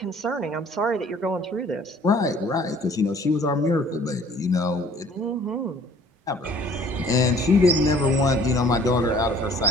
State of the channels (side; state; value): both; normal; correlation 0.54